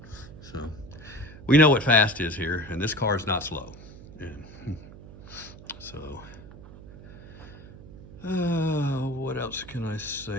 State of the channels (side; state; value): right; noise; hum, 17 dB below the sound